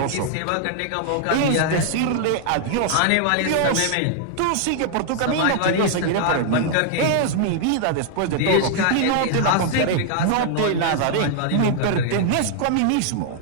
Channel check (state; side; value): different; both; correlation 0.00